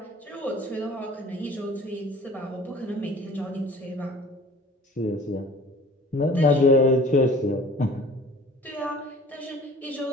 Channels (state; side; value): normal; both; correlation 0.47